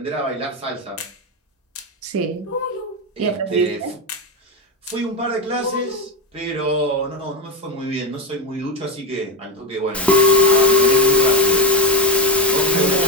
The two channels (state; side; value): normal; both; correlation 0.14